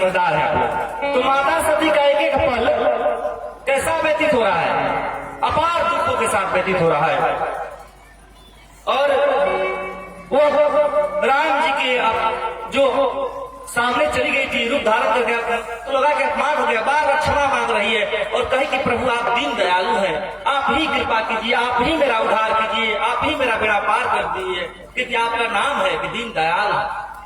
है आप लोग। तो माता सती का एक एक पल कैसा व्यतीत हो रहा है, अपार दुखों के साथ व्यतीत हो रहा है। और वो राम जी के जो सामने चली गई थी, रूप धारण कर गया तो लगा कि अपमान हो गया, बार बार क्षमा मांग रही है और कही कि प्रभु आप दीन दयालु हैं, आप ही कृपा कीजिए, आप ही मेरा उद्धार कीजिए, आप ही मेरा बेड़ा पार कर दीजिए, क्योंकि आपका नाम है कि दीन दयाल,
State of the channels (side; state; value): both; identical; correlation 1.00